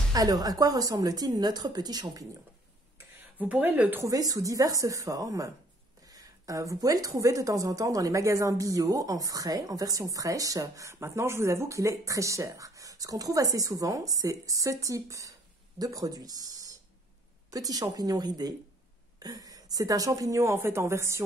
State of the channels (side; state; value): both; normal; correlation 0.60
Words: Alors, à quoi ressemble-t-il notre petit champignon? Vous pourrez le trouver sous diverses formes. Vous pouvez le trouver de temps en temps dans les magasins bio, en frais, en version fraîche. Maintenant, je vous avoue qu'il est très cher. Ce qu'on trouve assez souvent, c'est ce type de produit. Petit champignon ridé. C'est un champignon en fait en